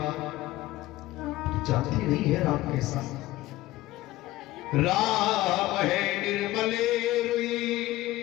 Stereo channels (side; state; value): right; quieter; 17.0 dB